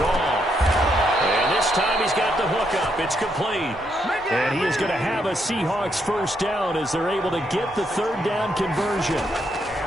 And this time he's got the hook up. It's complete. And he is going to have a Seahawks 1st down as they're able to get the 3rd down conversion.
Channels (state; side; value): normal; both; correlation 0.77